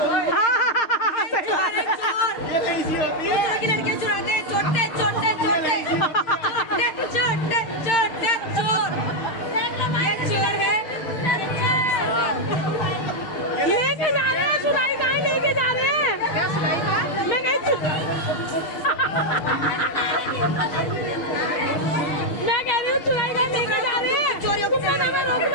लड़कियां चुराते हैं, छोटे छोटे छोटे छोटे छोटे चोर। ये चोर है, लेके जा रहे हैं, चुराई कहाँ लेके जा रहे हैं? मैं नहीं मैं कह रही हूँ चुराई कहाँ लेके जा रहे हैं? चोरियों को रोक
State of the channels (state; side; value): late; right; 6.5 ms